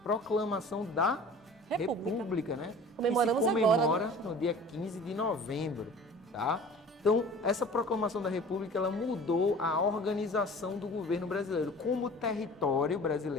proclamação da República, né? Comemoramos que se comemora agora, né? no dia 15 de novembro, tá? Então, essa proclamação da República, ela mudou a organização do governo brasileiro. Como o território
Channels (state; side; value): normal; both; correlation 0.43